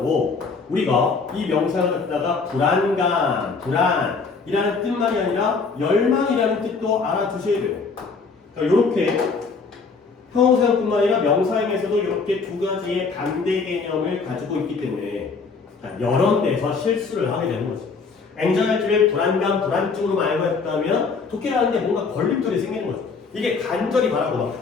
우리가 이 명사형을 갖다가 불안감, 불안이라는 뜻만이 아니라 열망이라는 뜻도 알아두셔야 돼요. 그러니까 이렇게 형용사형뿐만 아니라 명사형에서도 이렇게 두 가지의 반대 개념을 가지고 있기 때문에 여러 데서 실수를 하게 되는 거죠. anxiety를 불안감, 불안증으로 알고 했다면 독해를 하는데 뭔가 걸림돌이 생기는 거죠. 이게 간절히 바라고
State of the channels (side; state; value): right; quieter; 4.7 dB